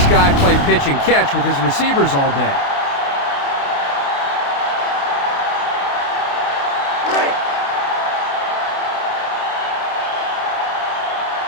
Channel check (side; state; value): right; late; 29 ms